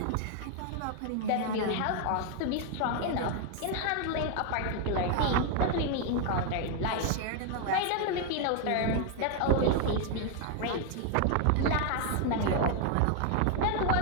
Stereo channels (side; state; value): both; different; correlation 0.00